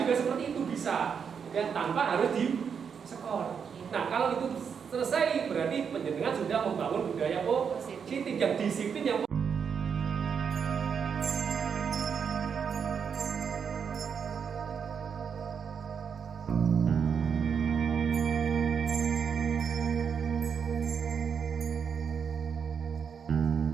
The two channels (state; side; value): quieter; left; 6.8 dB